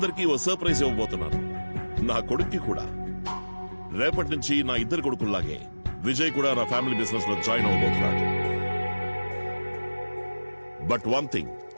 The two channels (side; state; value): both; inverted; correlation -1.00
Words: ఓ సర్ప్రైజ్ ఇవ్వబోతున్నాను. నా కొడుక్కి కూడా. రేపటి నుంచి నా ఇద్దరు కొడుకుల్లాగే విజయ్ కూడా నా ఫ్యామిలీ బిజినెస్ లో జాయిన్ అవ్వబోతున్నాడు. బట్ వన్ థింగ్,